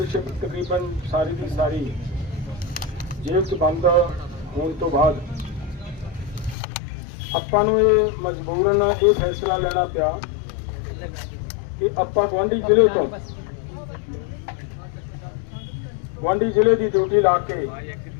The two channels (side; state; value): right; drops out; at 6.6 s